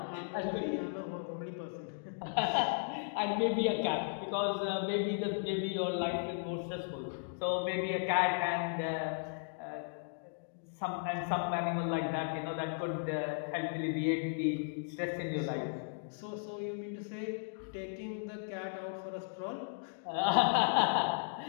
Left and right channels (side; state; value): right; silent; digital silence